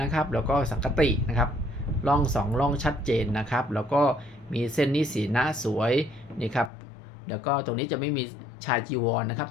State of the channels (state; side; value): drops out; right; at 6.7 s